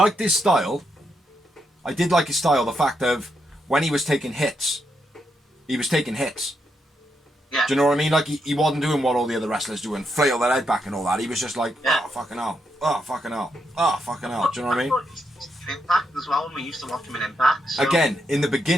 his style. I did like his style, the fact of when he was taking hits, he was taking hits. Yeah. Do you know what I mean? Like, he wasn't doing what all the other wrestlers do and flail their head back and all that. He was just like, oh, fucking hell. Oh, fucking hell. Oh, fucking hell. Do you know what I mean? Impact as well, when we used to watch him in Impact. So. Again, in the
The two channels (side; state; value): both; normal; correlation 0.81